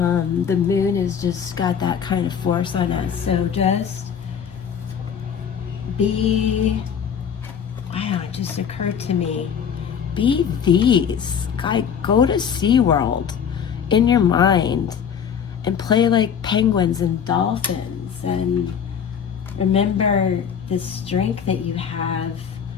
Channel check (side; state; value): right; quieter; 7.7 dB